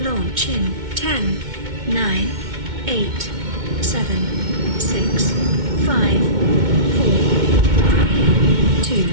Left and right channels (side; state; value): left; late; 2.2 ms